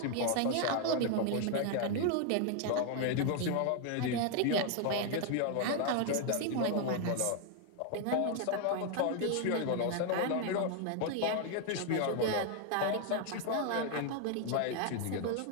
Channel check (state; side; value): different; both; correlation 0.00